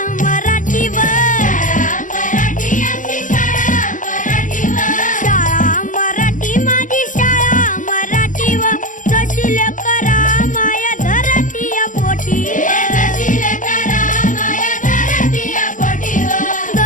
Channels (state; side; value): late; right; 0.38 ms